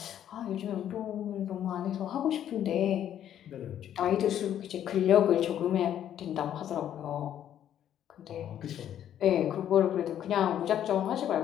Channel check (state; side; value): quieter; right; 10.5 dB